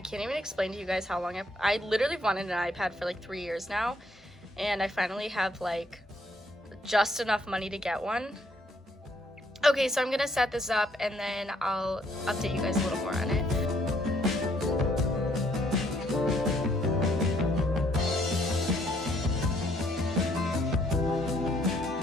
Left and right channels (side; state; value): both; normal; correlation 0.68